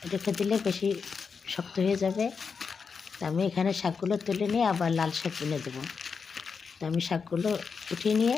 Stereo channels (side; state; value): right; quieter; 5.6 dB